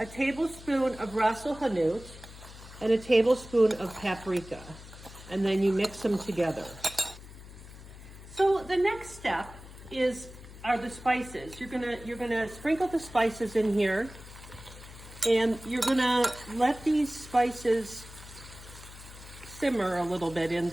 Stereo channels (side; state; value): left; noise; hum, 16 dB below the sound